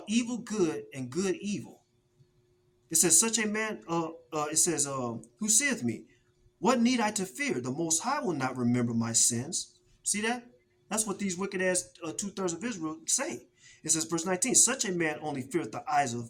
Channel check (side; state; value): both; identical; correlation 1.00